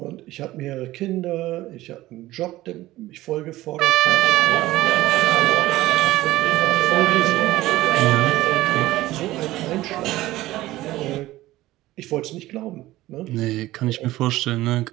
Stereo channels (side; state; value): left; quieter; 16.8 dB